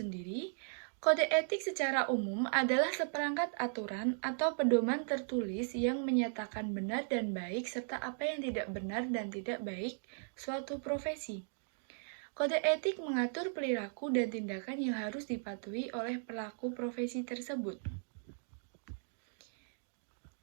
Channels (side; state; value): left; silent; digital silence